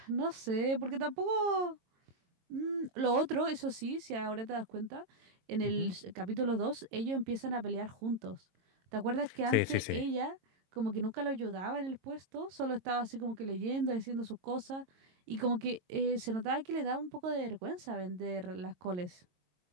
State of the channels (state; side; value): late; left; 22 ms